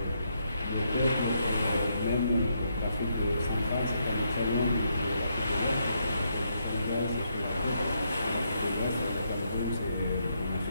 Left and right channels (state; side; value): inverted; both; correlation -0.78